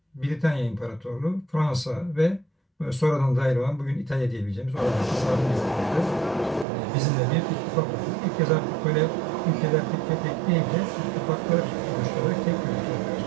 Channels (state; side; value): drops out; left; at 6.7 s